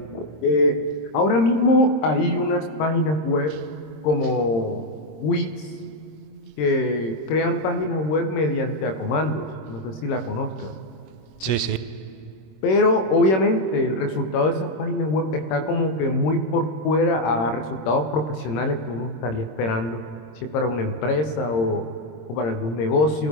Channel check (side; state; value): right; late; 26 ms